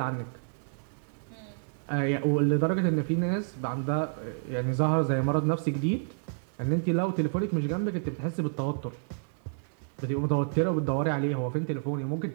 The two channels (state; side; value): silent; left; 58 dB below the other